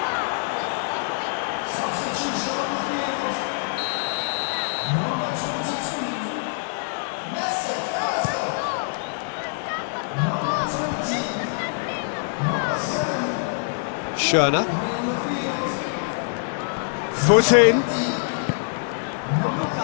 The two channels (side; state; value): right; silent; digital silence